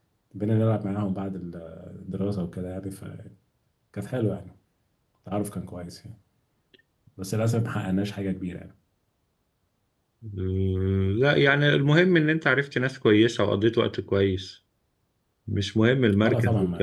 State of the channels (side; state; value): both; identical; correlation 1.00